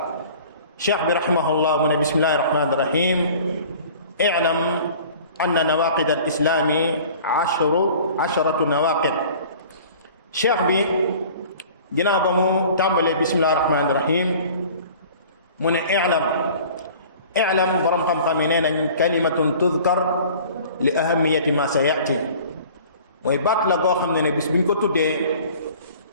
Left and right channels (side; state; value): both; inverted; correlation -0.46